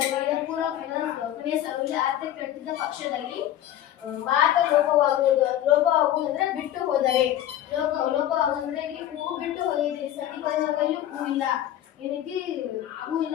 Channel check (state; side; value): quieter; right; 12.2 dB